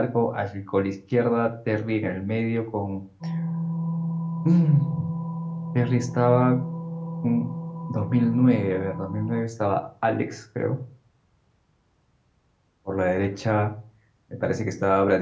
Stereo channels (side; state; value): both; identical; correlation 1.00